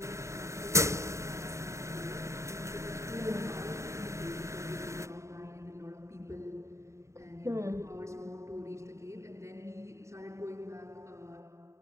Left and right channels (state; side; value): late; left; 0.14 ms